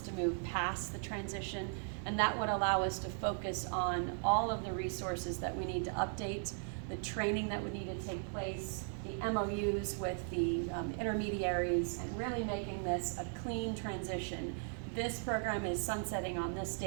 to move past the transition. And that would allow us to focus on all of the resources that we need to update, the training that would need to take place, the MOUs with the intermediaries and really making this a clean transition. This program is sunsetting on this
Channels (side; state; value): left; silent; 53 dB below the other